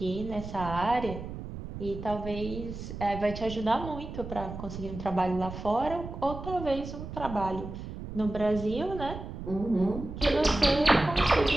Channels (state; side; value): noise; right; rumble, 9 dB below the sound